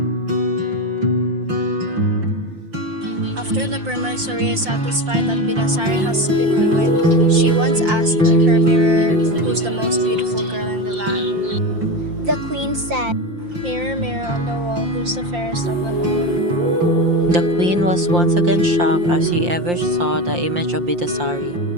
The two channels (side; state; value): left; late; 5.7 ms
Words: After the Permaisuri is satisfied that Bidasari has been ruined, she once asked her mirror who's the most beautiful girl in the land. The queen said, Mirror, mirror on the wall, who's the fairest of them all? The queen was once again shocked as she ever saw the image of Bidasari.